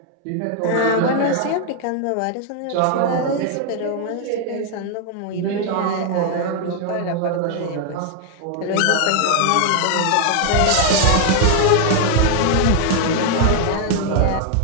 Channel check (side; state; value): both; different; correlation 0.00